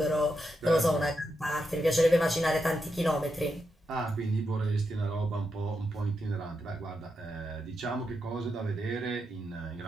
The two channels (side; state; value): both; normal; correlation 0.85